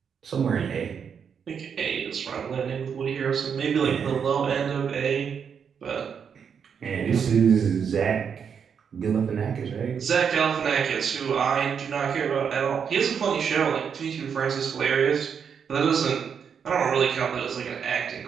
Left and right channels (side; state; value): left; quieter; 7.0 dB